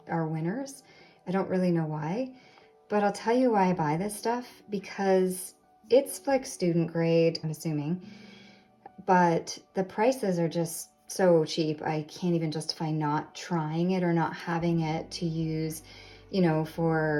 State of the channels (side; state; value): both; identical; correlation 1.00